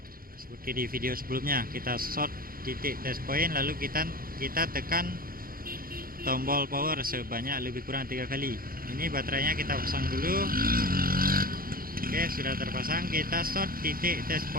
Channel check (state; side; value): late; left; 0.42 ms